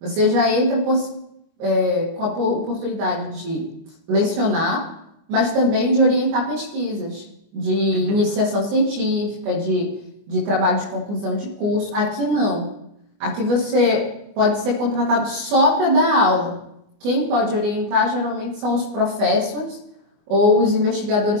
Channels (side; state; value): left; late; 24 ms